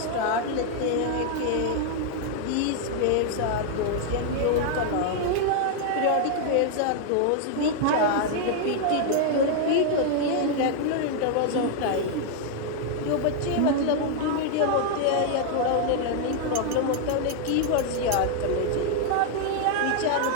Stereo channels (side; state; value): both; different; correlation 0.00